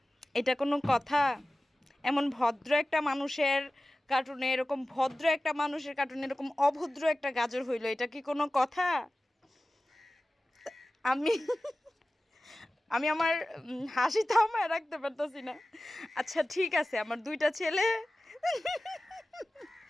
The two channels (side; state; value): both; normal; correlation 0.96